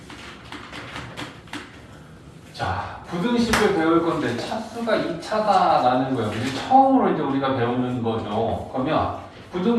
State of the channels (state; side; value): identical; both; correlation 1.00